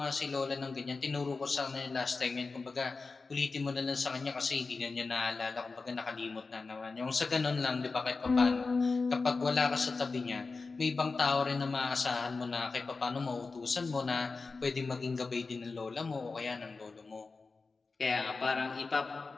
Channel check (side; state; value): right; quieter; 4.1 dB